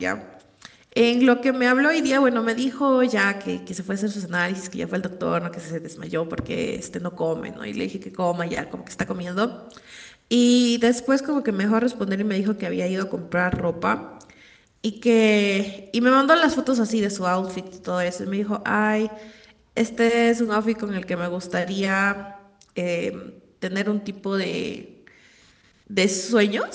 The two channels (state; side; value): identical; both; correlation 1.00